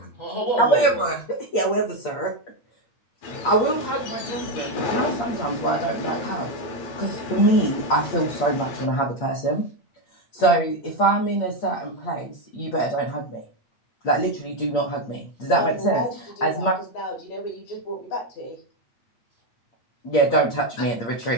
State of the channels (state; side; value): late; right; 8.6 ms